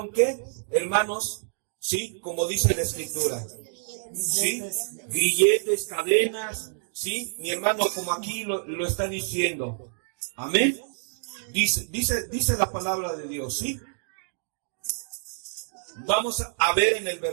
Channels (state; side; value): silent; left; digital silence